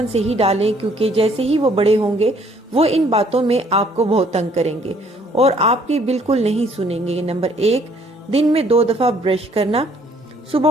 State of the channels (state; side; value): normal; both; correlation 0.62